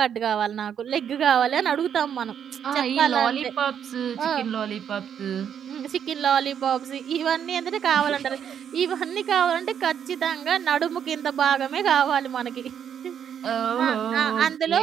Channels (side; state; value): left; quieter; 8.5 dB